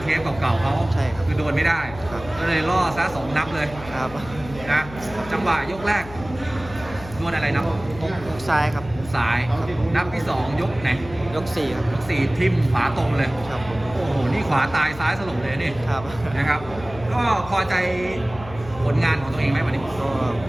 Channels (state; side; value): noise; left; hum, 15 dB below the sound